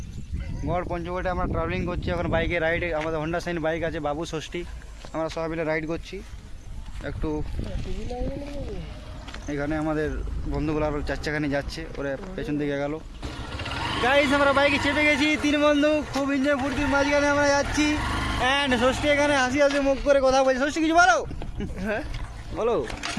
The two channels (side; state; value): both; identical; correlation 1.00